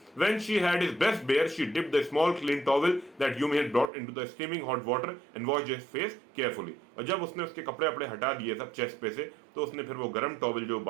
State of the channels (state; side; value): drops out; left; at 3.9 s